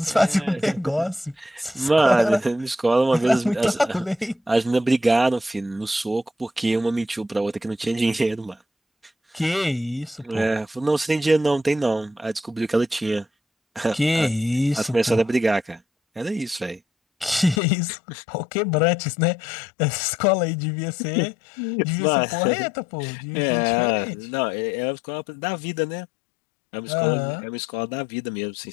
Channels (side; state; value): right; drops out; at 17.6 s